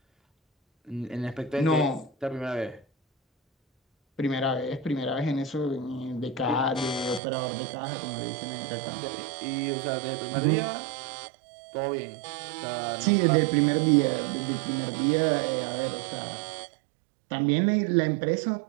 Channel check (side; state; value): left; drops out; at 7.2 s